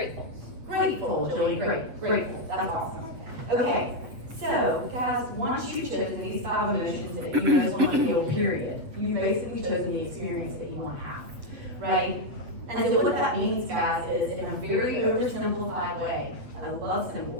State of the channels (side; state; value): left; late; 8.1 ms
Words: Grateful, Joey, great. Grateful. That's awesome. Okay. So, guys, once you've chosen these 5 emotions that you most want to feel, period, you've basically chosen the experience that you want to have, right? And so what that means, guys, is in a very oversimplified way, I love